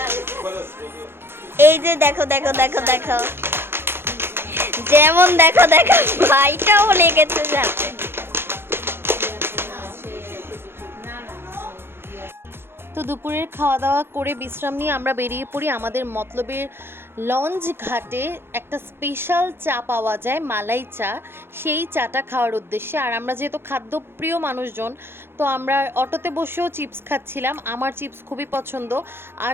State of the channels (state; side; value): late; left; 0.11 ms